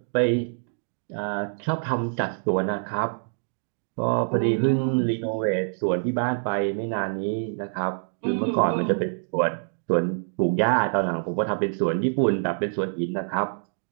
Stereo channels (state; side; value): silent; left; digital silence